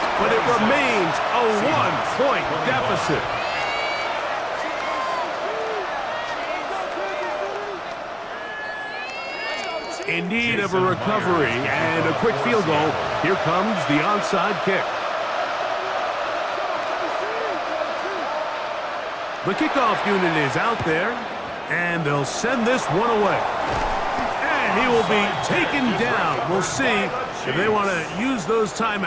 but it remains a 1-point deficit. In need of a recovery and a quick field goal. Here comes the onside kick. The kickoff unit is out there, and they'll send this one away. And he will be taken down. We'll see if they want to use those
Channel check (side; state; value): both; identical; correlation 1.00